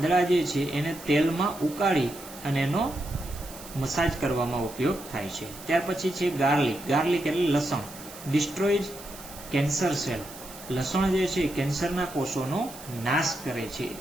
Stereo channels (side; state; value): right; noise; hiss, 16 dB below the sound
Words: જે છે એને તેલમાં ઉકાળી અને એનો મસાજ કરવામાં ઉપયોગ થાય છે. ત્યાર પછી છે ગાર્લિક, ગાર્લિક એટલે લસણ. ડિસ્ટ્રોઇઝ કેન્સર સેલ, લસણ જે છે કેન્સરના કોષોનો નાશ કરે છે,